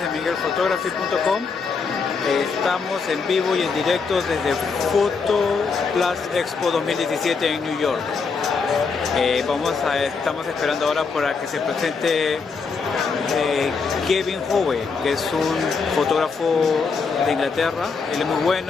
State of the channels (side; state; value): right; quieter; 5.0 dB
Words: miguelphotography.com. Estamos en vivo y en directo desde Plus Expo 2017 en New York. Estamos esperando ahora para que se presente Gavin Hoey, que es un fotógrafo de Inglaterra. Él es muy